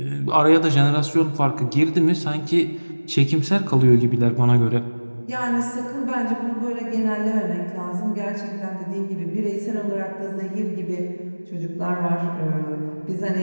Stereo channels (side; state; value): both; inverted; correlation -1.00